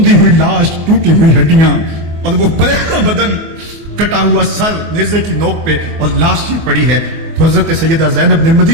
ہوئی لاش، ٹوٹی ہوئی ہڈیاں اور وہ پریشان بدن، کٹا ہوا سر نیزے کی نوک پہ اور لاش یہ پڑی ہے، تو حضرت سیدہ زینب نے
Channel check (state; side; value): late; left; 23 ms